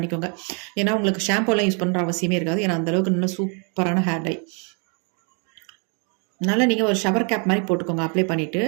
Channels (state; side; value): quieter; left; 37.4 dB